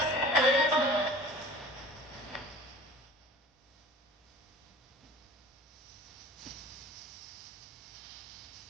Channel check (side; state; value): both; normal; correlation 0.44